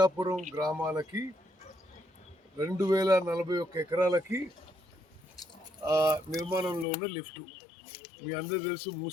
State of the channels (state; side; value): drops out; right; at 6.9 s